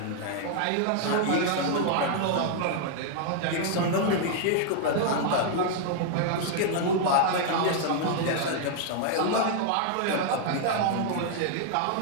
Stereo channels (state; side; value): different; both; correlation 0.00